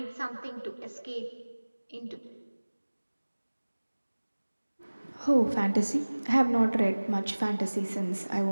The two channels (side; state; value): both; inverted; correlation -1.00